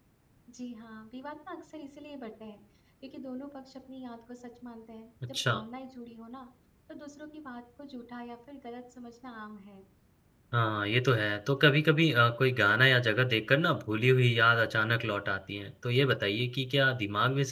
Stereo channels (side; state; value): both; identical; correlation 1.00